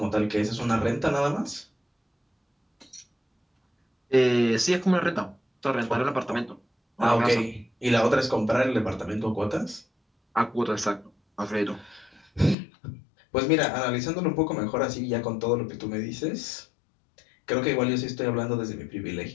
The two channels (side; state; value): right; drops out; at 12.6 s